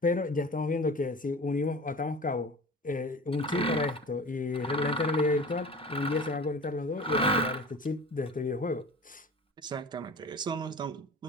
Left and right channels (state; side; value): normal; both; correlation 0.37